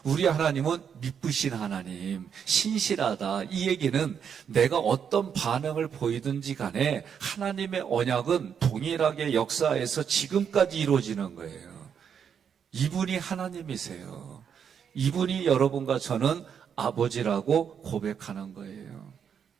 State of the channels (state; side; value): quieter; left; 7.6 dB